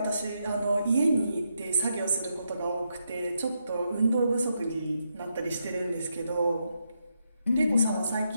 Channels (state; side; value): inverted; both; correlation -0.81